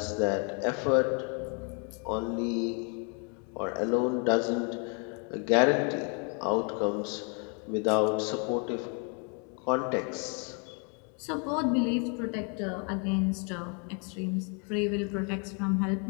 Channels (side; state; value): right; quieter; 37.1 dB